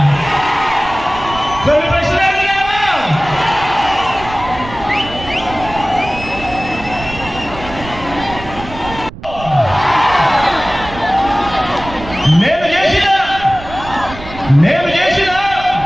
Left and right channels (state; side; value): noise; right; rumble, 14 dB below the sound